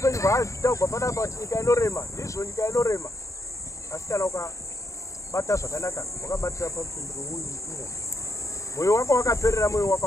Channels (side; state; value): right; late; 0.15 ms